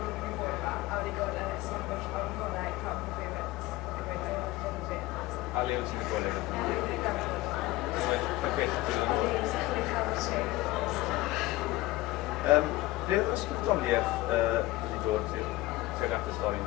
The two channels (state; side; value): quieter; right; 18.3 dB